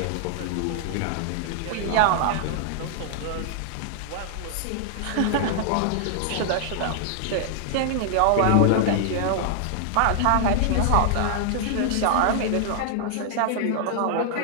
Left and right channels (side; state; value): both; different; correlation -0.01